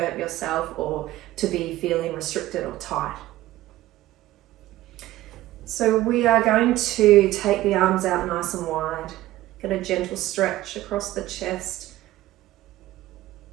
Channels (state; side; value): quieter; left; 15.9 dB